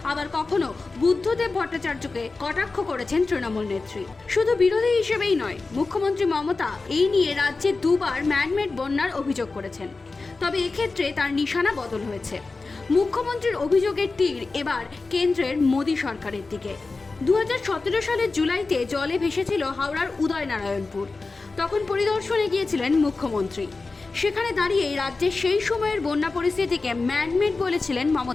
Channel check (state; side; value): quieter; right; 3.8 dB